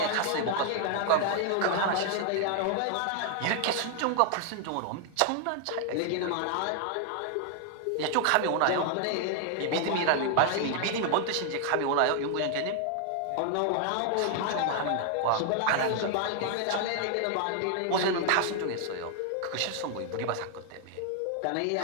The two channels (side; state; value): both; different; correlation 0.00